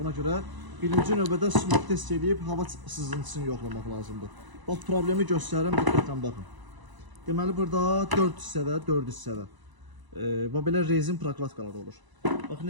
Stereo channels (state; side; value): late; left; 1.0 ms